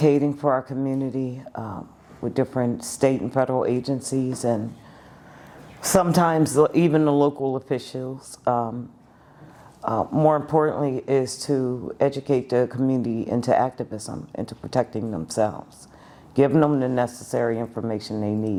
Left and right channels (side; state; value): both; identical; correlation 1.00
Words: for our community with different state and federal agencies, and sometimes even the local officials. More importantly is to educate the community into activism, into protecting themselves, giving them the necessary information they